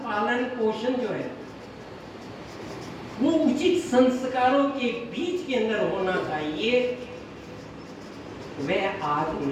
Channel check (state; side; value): identical; both; correlation 1.00